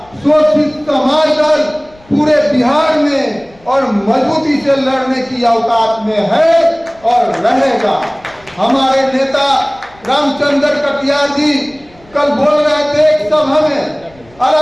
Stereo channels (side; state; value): left; noise; rumble, 28 dB below the sound